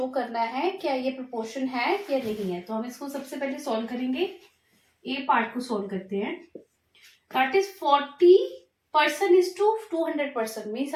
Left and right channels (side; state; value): both; identical; correlation 1.00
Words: करना है क्या ये प्रोपोर्शन है या नहीं है। तो हम इसको सबसे पहले सॉल्व करेंगे। ए पार्ट को सॉल्व करते हैं। That is 40% is to 200%, means